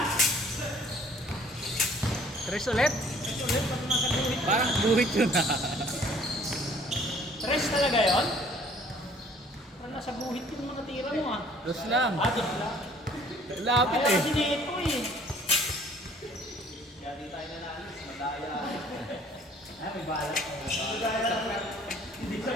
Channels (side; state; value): both; normal; correlation 0.56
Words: Tres ulit? Tres ulit. Pag nasa buhit. Parang buhit yun ha. Tres talaga yun? Parang nasa buhit yung mga tira mo ah. Dos lang. Dos lang. Lapit Kaya eh. kasi dito eh. Kaya di tayo nanalis. Madaya. Ay, may balat. Hindi sa